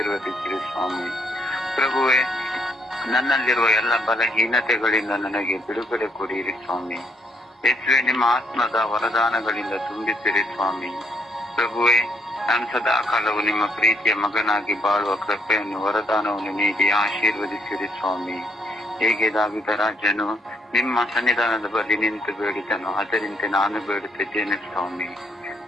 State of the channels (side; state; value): both; normal; correlation 0.70